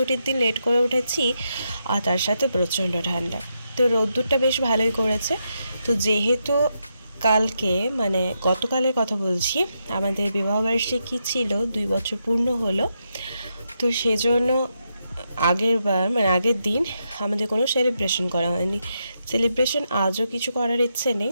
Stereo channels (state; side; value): inverted; both; correlation -0.83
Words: দিন লেট করে উঠেছি আর তার সাথে প্রচণ্ড ঠান্ডা, তো রোদ্দুরটা বেশ ভালোই করেছে। তো যেহেতু কালকে মানে গতকালের কথা বলছি, আমাদের বিবাহবার্ষিকী ছিল, 2 বছর পূর্ণ হলো। তো সেজন্য আগের দিন আমাদের কোনো সেলিব্রেশন করা হয়নি। সেলিব্রেশন আজও কিছু করার ইচ্ছে নেই,